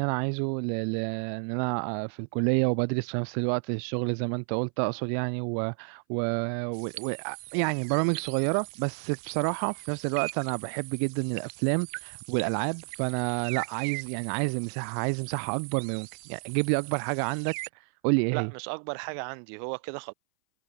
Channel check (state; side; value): silent; left; 58 dB below the other